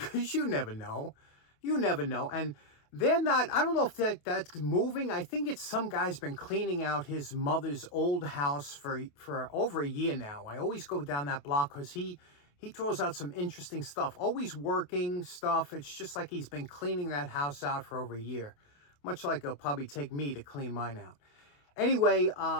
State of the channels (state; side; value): late; right; 28 ms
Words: you never know. You never know. And they're not, I don't know if that's moving. I think it's some guy's been cleaning out his mother's old house for over a year now. I always go down that block because he throws out some interesting stuff. Always working stuff. It's just like he's been cleaning that house out for over a year. Much like it'll probably take me to clean mine out. Anyway,